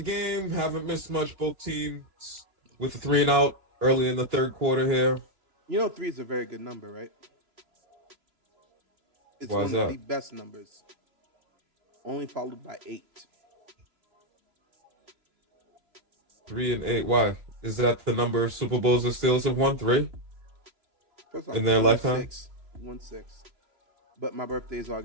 Haven't missed much. Both teams with a 3-and-out early in the third quarter here. You know, 3 is a very good number, right? It's Why is one of that? the best numbers. Only followed by 8. 3 and 8. Why? Is that the number of Super Bowls the Steelers have won? 3 in their lifetime? 6. 1-6. But my birthday is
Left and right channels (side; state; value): left; late; 2.9 ms